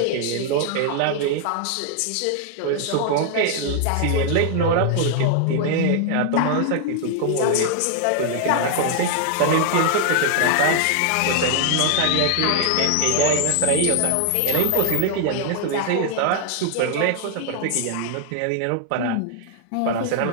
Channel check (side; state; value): both; different; correlation 0.00